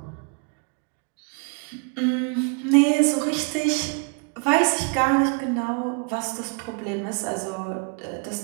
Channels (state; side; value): quieter; left; 37.5 dB